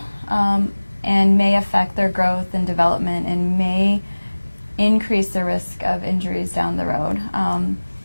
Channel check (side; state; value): both; inverted; correlation -1.00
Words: And may affect their growth and development and may increase the risk of injuries down the road.